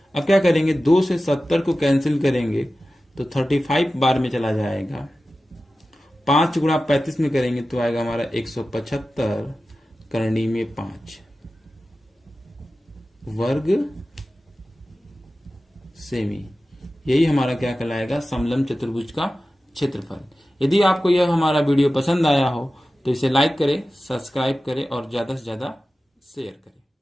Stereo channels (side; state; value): both; normal; correlation 0.95